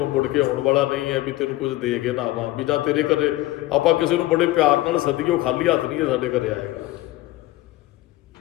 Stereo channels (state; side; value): quieter; right; 17.3 dB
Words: ਮੁੜ ਕੇ ਆਉਣ ਵਾਲਾ ਨਹੀਂ ਹੈ ਵੀ ਤੈਨੂੰ ਕੁਝ ਦੇ ਕੇ ਨਾ ਆਵਾਂ। ਵੀ ਜਾਂ ਤੇਰੇ ਘਰੇ ਆਪਾਂ ਕਿਸੇ ਨੂੰ ਬੜੇ ਪਿਆਰ ਨਾਲ ਸੱਦੀਏ, ਉਹ ਖਾਲੀ ਹੱਥ ਨਹੀਂ ਹੈ ਸਾਡੇ ਘਰੇ ਆਏਗਾ,